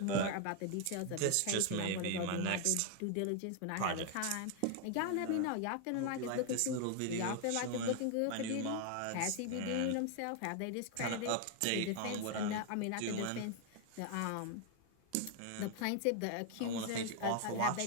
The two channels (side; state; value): both; different; correlation 0.00